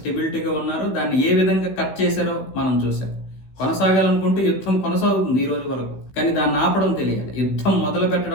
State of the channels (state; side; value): late; right; 16 ms